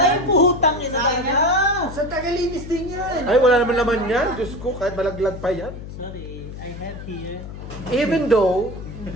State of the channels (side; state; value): left; noise; hum, 11 dB below the sound